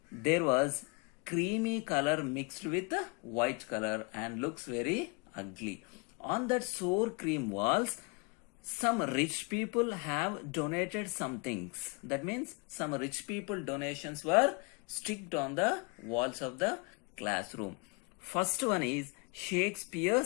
there was creamy color mixed with white color and looks very ugly. On that sour cream walls, some rich people have donated some things. That means some rich people donations were sticked on the walls of the classroom. First one is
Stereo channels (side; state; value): right; quieter; 30.9 dB